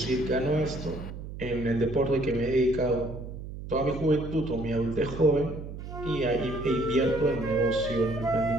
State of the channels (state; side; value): noise; right; hum, 10 dB below the sound